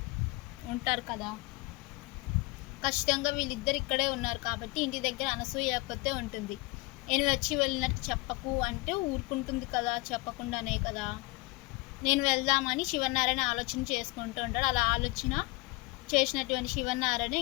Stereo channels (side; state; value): right; quieter; 24.1 dB